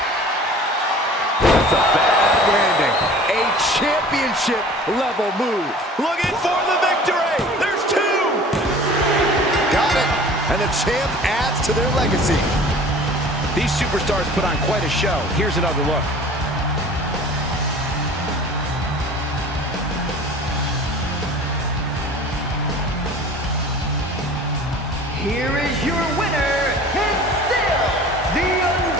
That's a bad landing. A championship level move. Looking for the victory. There's two. Got it. And the champ adds to their legacy. These superstars put on quite a show. Here's another look. Here is your winner, and still the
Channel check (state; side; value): normal; both; correlation 0.44